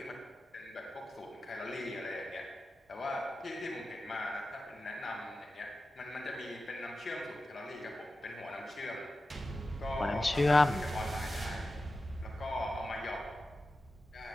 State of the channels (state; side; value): normal; both; correlation 0.93